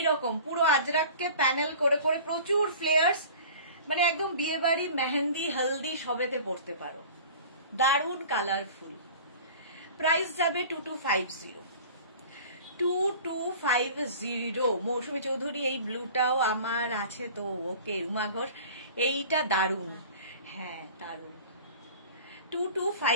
পুরো আজরাককে প্যানেল করে করে, প্রচুর ফ্লেয়ার্স, মানে একদম বিয়ে বাড়ি, মেহেন্দি, হলদি সবেতে পড়তে পারো। দারুণ কালারফুল। প্রাইস যাবে 2250। 2250। মৌসুমী চৌধুরী, এই ব্লুটাও আমার আছে তো। ওকে রুমা ঘোষ, এইটা দারুণ, হ্যাঁ দারুণ।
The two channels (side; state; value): both; inverted; correlation -0.42